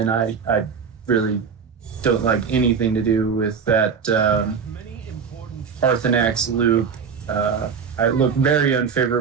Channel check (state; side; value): quieter; left; 6.2 dB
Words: I really don't like anything to do with that Arthanax loop. I look very